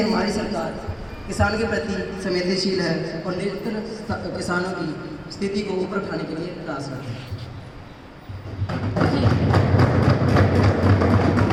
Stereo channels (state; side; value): identical; both; correlation 1.00